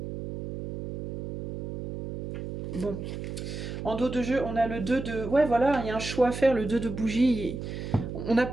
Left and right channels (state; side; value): noise; right; hum, 6 dB below the sound